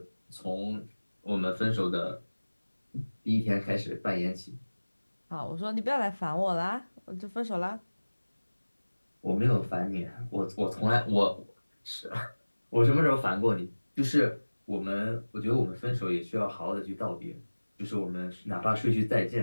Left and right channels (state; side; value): inverted; both; correlation -1.00